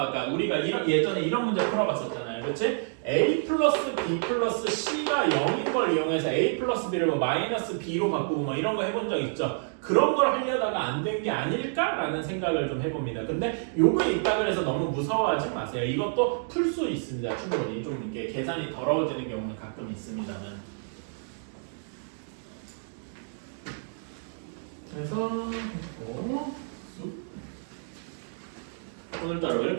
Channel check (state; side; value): silent; left; digital silence